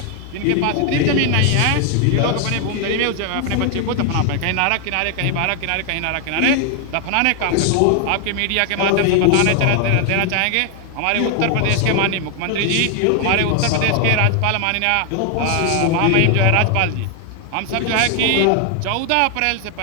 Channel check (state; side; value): different; both; correlation 0.00